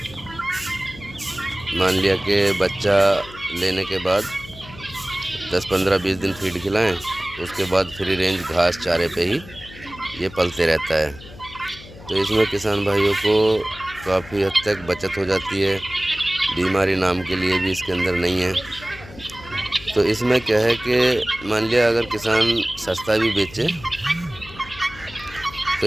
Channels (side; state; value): left; noise; hum, 18 dB below the sound